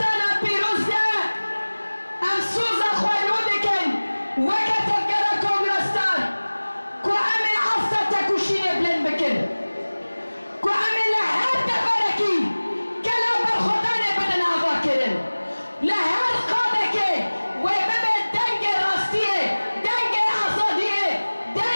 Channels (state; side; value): inverted; both; correlation -1.00